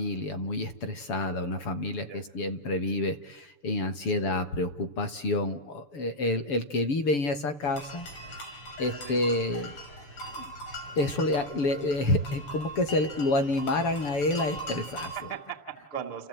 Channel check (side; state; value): right; late; 6.9 ms